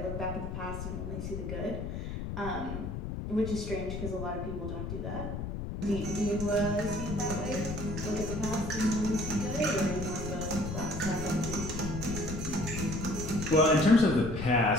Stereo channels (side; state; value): left; noise; rumble, 5 dB below the sound